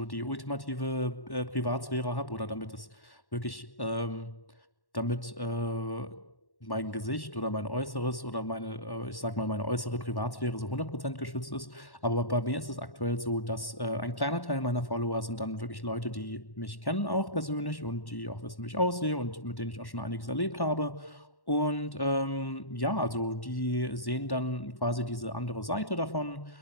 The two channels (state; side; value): late; right; 1.1 ms